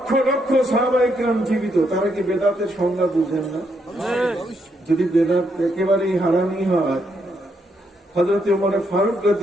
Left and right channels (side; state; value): both; normal; correlation 0.77